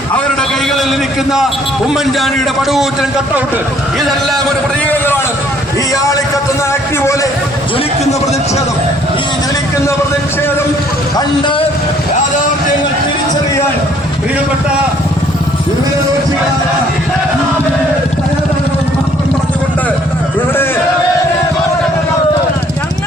അവരുടെ കൈകളിലിരിക്കുന്ന ഉമ്മൻചാണ്ടിയുടെ പടുകൂറ്റൻ കട്ടൗട്ട്, ഇതെല്ലാം ഒരു പ്രതീകങ്ങളാണ്. ഈ ആളിക്കത്തുന്ന അഗ്നി പോലെ ജ്വലിക്കുന്ന പ്രതിഷേധം, ഈ ജ്വലിക്കുന്ന പ്രതിഷേധം കണ്ട് യാഥാർത്ഥ്യങ്ങൾ തിരിച്ചറിയാൻ പ്രിയപ്പെട്ട പറഞ്ഞുകൊണ്ട് ഇവിടെ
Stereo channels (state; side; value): normal; both; correlation 0.61